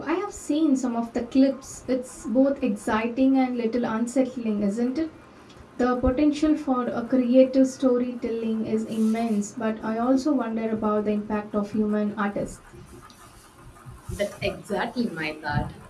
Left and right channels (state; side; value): identical; both; correlation 1.00